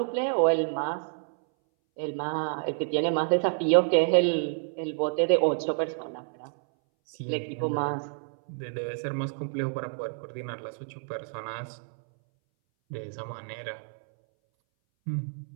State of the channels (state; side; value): silent; left; 59 dB below the other